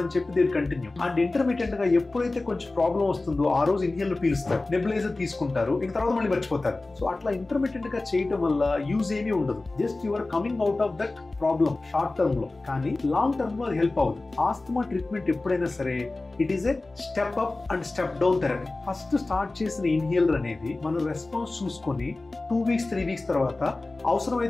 అని చెప్పి దీని కంటిన్యూ. అండ్ ఇంటర్మీడియట్ గా ఎప్పుడైతే కొంచెం ప్రాబ్లం వస్తుందో ఆ రోజు ఇన్హేలర్ పీలుస్తారు, నెబులైజర్ తీసుకుంటారు, ఇంక తర్వాత మళ్ళీ మర్చిపోతారు. సో అట్లా ఇంటర్మీడియట్ గా చేయటం వల్ల యూజ్ ఏమీ ఉండదు. Just your coming out of that problem short term లో, కానీ లాంగ్ టర్మ్ లో అది హెల్ప్ అవ్వదు. ఆస్తమా ట్రీట్మెంట్ ఎప్పుడైనా సరే it is a step up and step down therapy. First start చేసిన ఇన్హేలర్ అనేది మనం రెస్పాన్స్ చూసుకొని 2 వీక్స్ 3 వీక్స్ తర్వాత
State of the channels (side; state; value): right; quieter; 3.2 dB